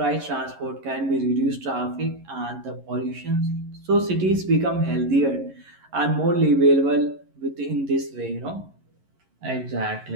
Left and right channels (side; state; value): left; late; 11 ms